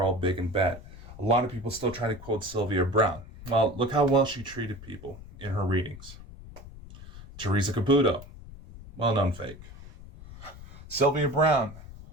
all big and bad. A lot of people still try to quote Sylvia Browne. Well, look how well she treated people in her readings. Teresa Caputo, well-known fake. Sylvia Browne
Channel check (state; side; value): noise; left; rumble, 16 dB below the sound